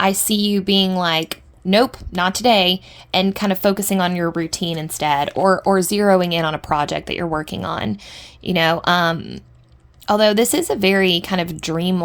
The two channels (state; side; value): identical; both; correlation 1.00